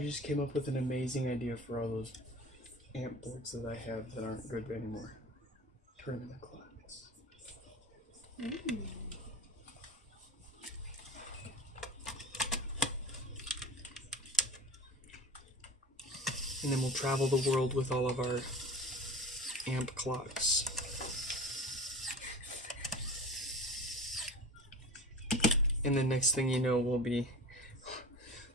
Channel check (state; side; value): normal; both; correlation 0.36